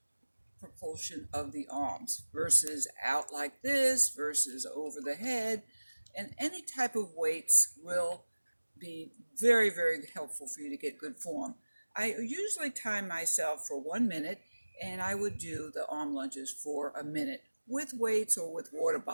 propulsion of the arms versus out like this versus over the head. And any type of weights will be very, very helpful for you to get good form. I usually time myself for 1 minute, and I would do the arm lunges for a minute with weights or with water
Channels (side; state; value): both; inverted; correlation -1.00